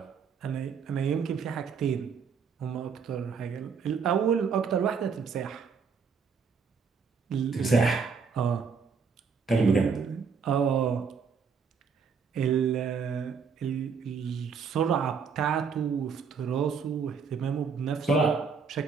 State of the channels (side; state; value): left; quieter; 5.8 dB